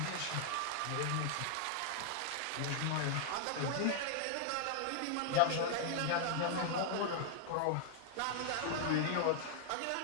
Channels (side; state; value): both; different; correlation 0.00